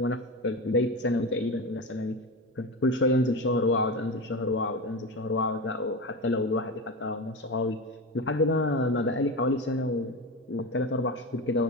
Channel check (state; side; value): normal; both; correlation 0.22